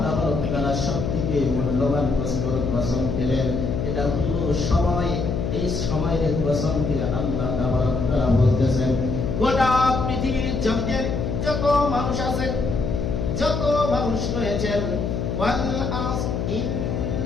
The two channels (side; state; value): left; noise; hum, 2 dB below the sound